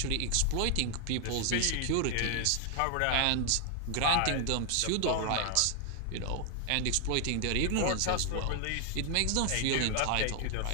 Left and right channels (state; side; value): different; both; correlation 0.00